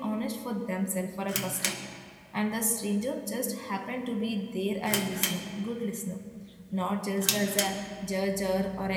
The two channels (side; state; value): both; identical; correlation 1.00